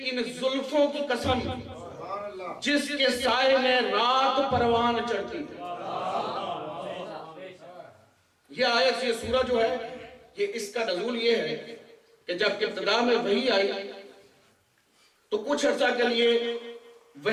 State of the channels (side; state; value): both; identical; correlation 1.00